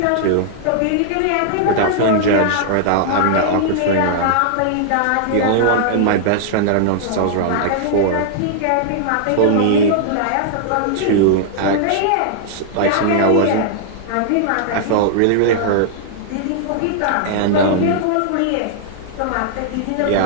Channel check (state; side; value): different; both; correlation -0.01